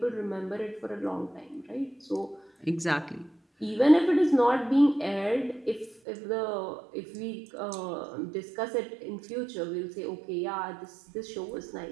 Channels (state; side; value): drops out; left; at 6.0 s